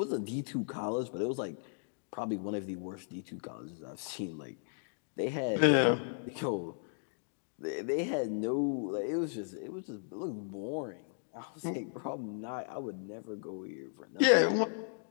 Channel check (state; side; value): silent; right; digital silence